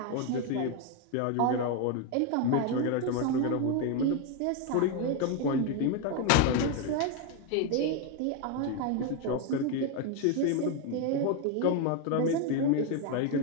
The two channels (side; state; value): both; different; correlation 0.02